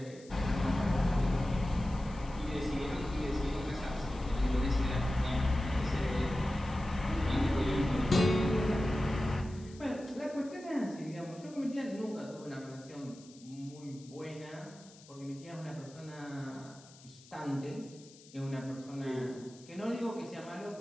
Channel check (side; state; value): left; noise; hiss, 23 dB below the sound